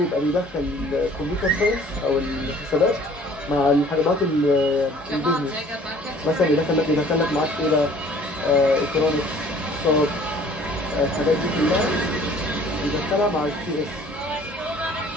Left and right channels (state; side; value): normal; both; correlation 0.53